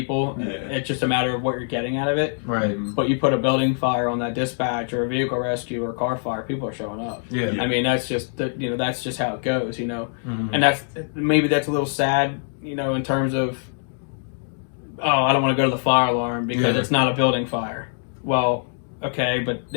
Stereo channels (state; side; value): silent; right; 63 dB below the other